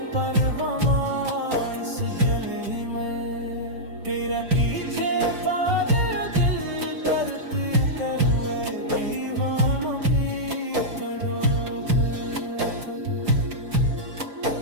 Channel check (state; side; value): late; left; 5.3 ms